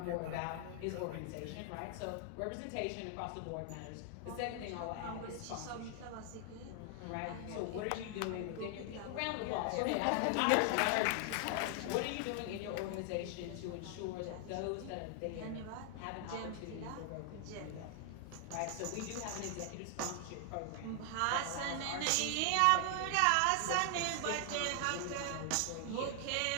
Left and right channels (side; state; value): both; different; correlation 0.00